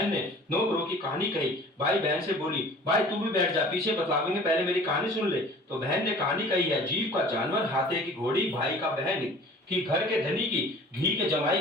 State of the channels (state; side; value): normal; both; correlation 0.47